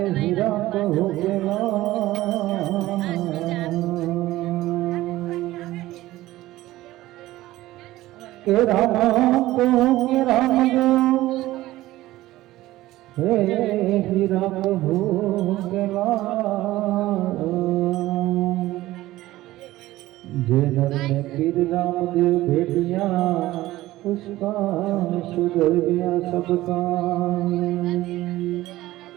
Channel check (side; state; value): left; quieter; 16.5 dB